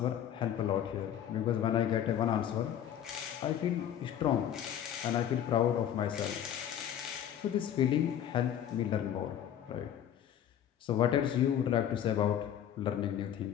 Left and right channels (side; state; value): right; quieter; 10.1 dB